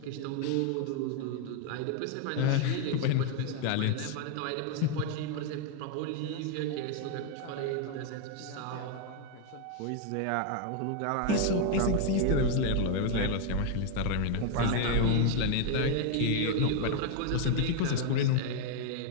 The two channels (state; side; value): different; both; correlation 0.00